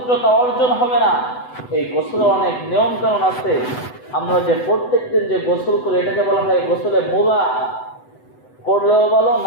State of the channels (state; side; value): late; right; 8.0 ms